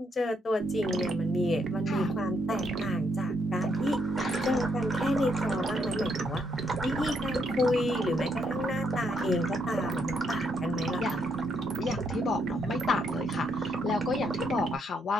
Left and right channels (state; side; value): normal; both; correlation 0.75